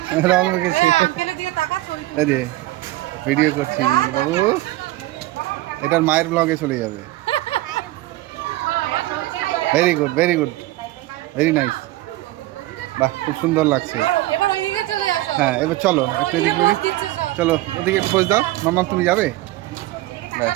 রং মেখেছি। এই যে ভিডিও করছি, বাবু এটার মায়ের ব্লগে চলে যাবে। Very good, very good, very nice. বাহ, খুব সুন্দর লাগছে। হ্যাঁ, এবার চলো একটু এদিকে, চলো ওদিকে একটু পোজ দাও। মাম্মা তুমি যাবে?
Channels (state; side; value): quieter; left; 17.4 dB